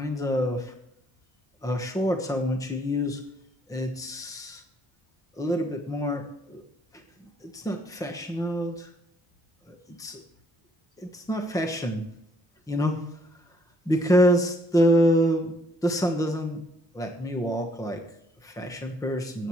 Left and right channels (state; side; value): normal; both; correlation 0.67